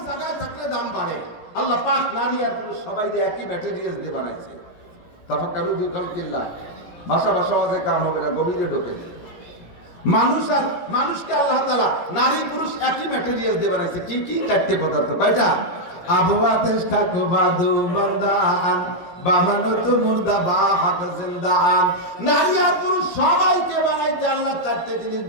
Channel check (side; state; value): right; late; 17 ms